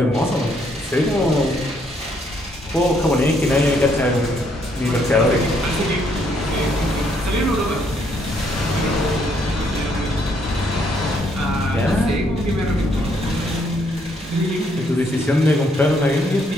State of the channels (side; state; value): both; normal; correlation 0.71